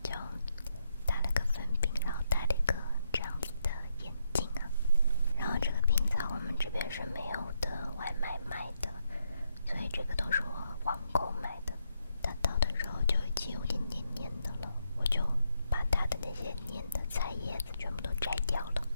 就打了个粉饼，然后戴了一个这样子的眼镜啊。然后这个冰在我们这边是没有的外卖卖的，所以这个都是我网购买的。它倒的时候就已经有点黏黏的了，我就把它的那些黏的菜叶子全部都摘掉了，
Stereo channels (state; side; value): inverted; both; correlation -0.79